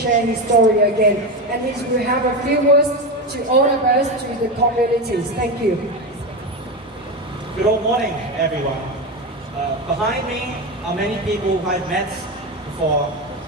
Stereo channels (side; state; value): both; normal; correlation 0.16